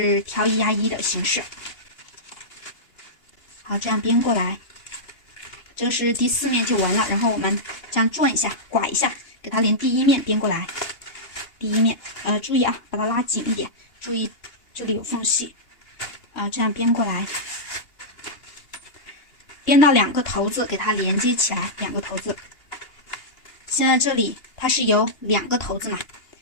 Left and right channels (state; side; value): late; right; 2.8 ms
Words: 挑1压1的形式。好，这样编过来，这是第4面就完了。然后我们这样转一下，拐一下，给它连第1面编过来。第1面，注意啊，把它拉紧一点，注意这里有缝隙啊，这样编过来，编到2个头子，给它连接起来，2个头子。现在这里它是有2个头子嘛，